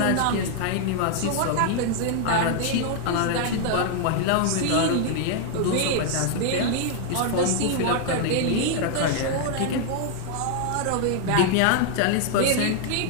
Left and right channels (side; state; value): both; different; correlation 0.00